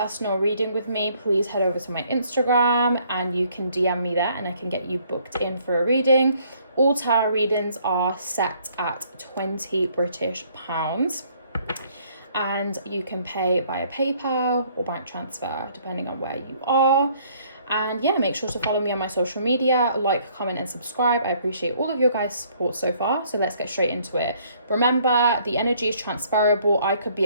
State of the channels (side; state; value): both; inverted; correlation -0.63